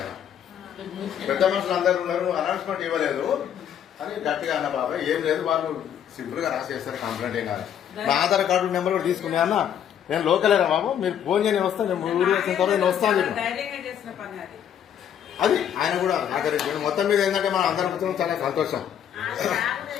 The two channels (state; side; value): quieter; right; 9.4 dB